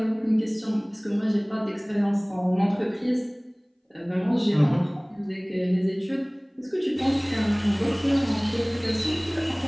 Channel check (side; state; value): both; identical; correlation 1.00